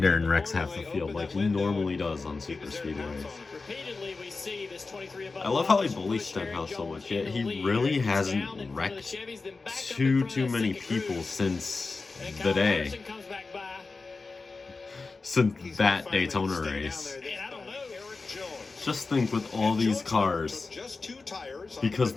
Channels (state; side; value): quieter; right; 4.0 dB